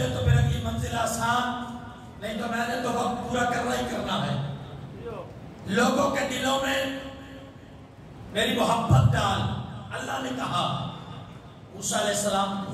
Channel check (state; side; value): identical; both; correlation 1.00